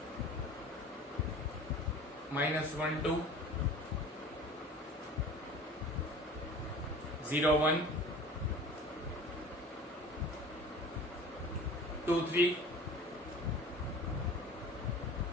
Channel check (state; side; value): normal; both; correlation 0.41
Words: minus 1, 2, 0, 1, 2, 3,